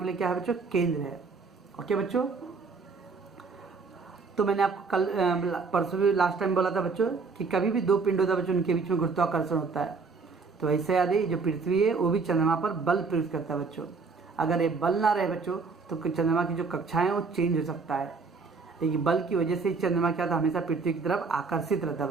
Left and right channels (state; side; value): quieter; left; 4.6 dB